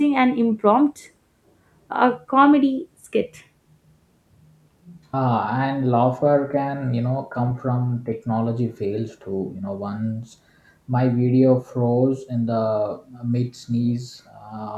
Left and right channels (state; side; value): identical; both; correlation 1.00